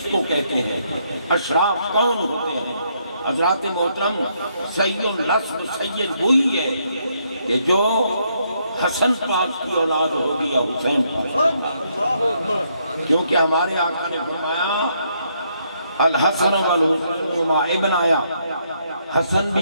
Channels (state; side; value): inverted; both; correlation -0.73